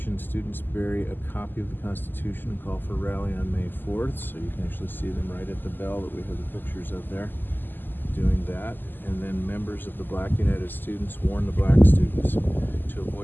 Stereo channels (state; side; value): late; right; 0.091 ms